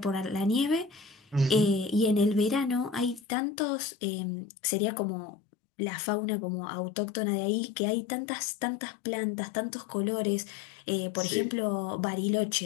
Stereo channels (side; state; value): right; drops out; at 3.2 s